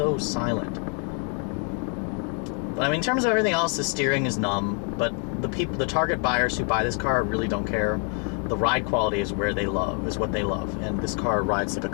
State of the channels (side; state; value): right; quieter; 37.4 dB